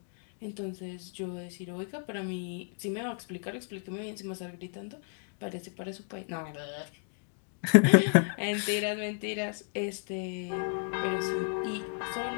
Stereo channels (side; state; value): right; silent; 56 dB below the other